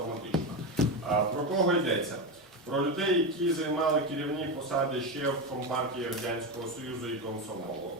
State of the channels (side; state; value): both; normal; correlation 0.15